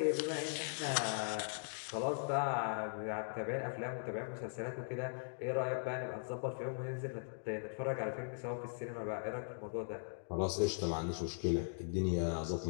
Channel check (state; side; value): silent; right; digital silence